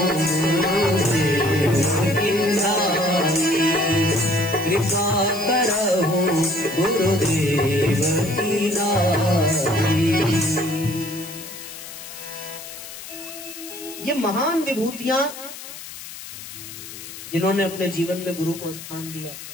कृपा करहु गुरुदेव की नाई। ये महान विभूतियां जिन्होंने अपने जीवन में गुरु को स्थान दिया,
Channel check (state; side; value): noise; left; hiss, 13 dB below the sound